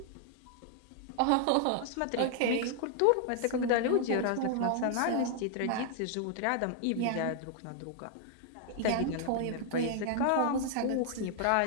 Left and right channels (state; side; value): different; both; correlation 0.00